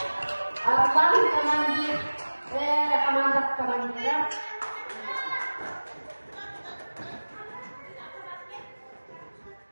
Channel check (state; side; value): inverted; both; correlation -1.00